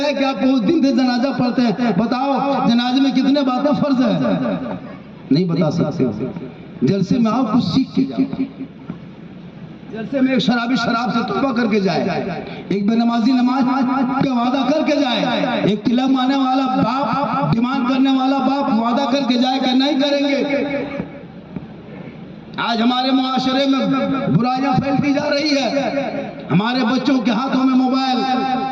कि आप उस दिन से जनाजा पढ़ते हैं, बताओ जनाजे में कितने बातें फर्ज है, नहीं बता सकते। जलसे में आओ, कुछ सीख के जाओ। जलसे में एक शराबी शराब से तौबा करके जाए, एक बेनमाजी नमाज का वादा करके जाए, एक तिलक मारने वाला बाप, डिमांड करने वाला बाप वादा करके जाए कि नहीं करेंगे। आज हमारे मुआशरे में बुराइयां फैलती जा रही है। हमारे बच्चों के हाथों में मोबाइल,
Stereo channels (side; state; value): both; identical; correlation 1.00